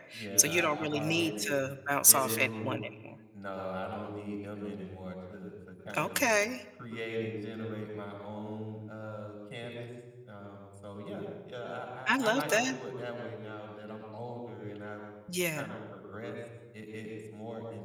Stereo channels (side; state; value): both; identical; correlation 1.00